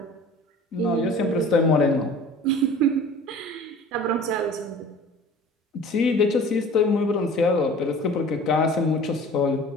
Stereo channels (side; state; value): both; normal; correlation 0.44